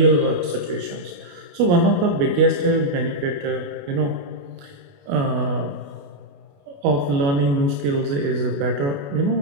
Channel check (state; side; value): late; left; 28 ms